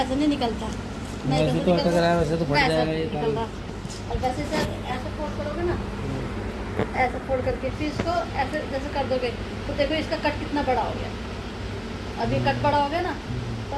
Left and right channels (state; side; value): identical; both; correlation 1.00